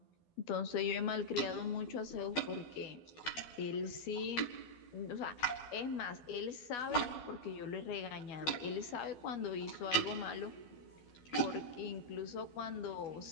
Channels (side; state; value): right; late; 12 ms